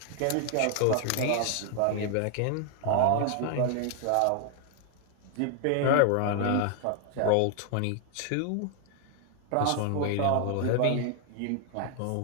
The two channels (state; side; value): different; both; correlation 0.00